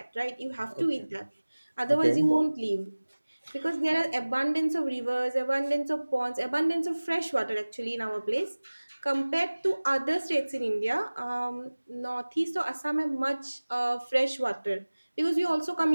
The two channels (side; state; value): both; inverted; correlation -1.00